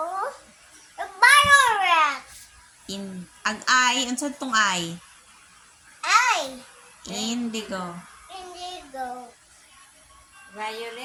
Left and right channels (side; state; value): both; identical; correlation 1.00